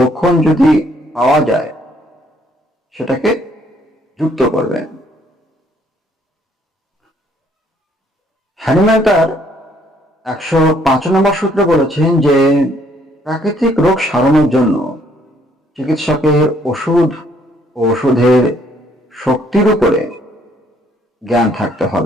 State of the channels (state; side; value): normal; both; correlation 0.66